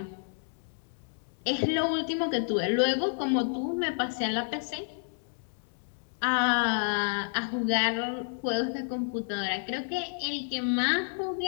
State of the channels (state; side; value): silent; right; 58 dB below the other